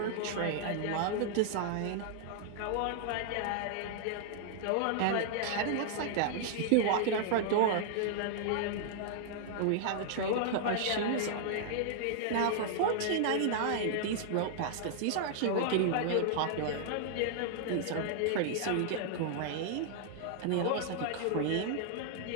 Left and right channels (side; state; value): both; different; correlation -0.01